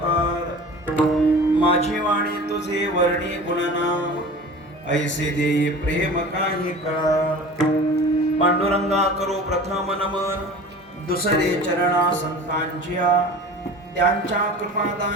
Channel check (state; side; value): normal; both; correlation 0.39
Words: माझी वाणी तुझे वर्णी गुणनाम ऐसे देई प्रेम काही कळा पांडुरंगा करो प्रथम नमन दुसरे चरणा संतांच्या त्यांच्या